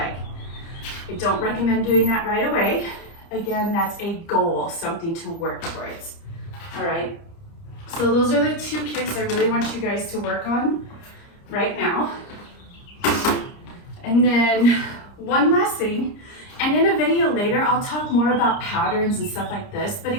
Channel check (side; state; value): right; late; 30 ms